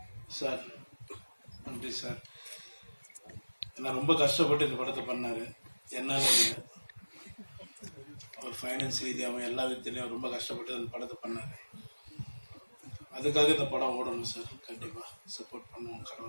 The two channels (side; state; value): both; inverted; correlation -1.00